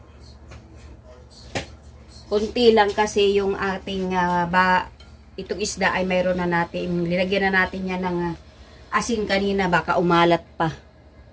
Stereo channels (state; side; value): identical; both; correlation 1.00